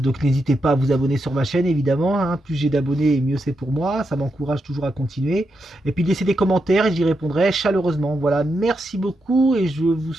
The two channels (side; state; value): both; normal; correlation 0.84